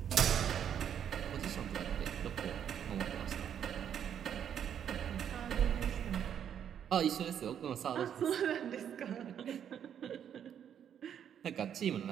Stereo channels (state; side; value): quieter; left; 9.0 dB